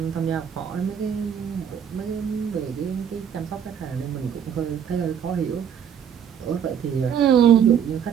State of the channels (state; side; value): quieter; left; 8.4 dB